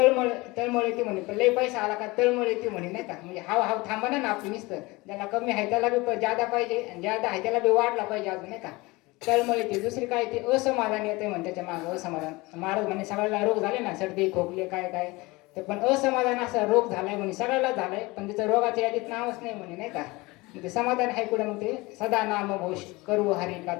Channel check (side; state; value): right; quieter; 22.8 dB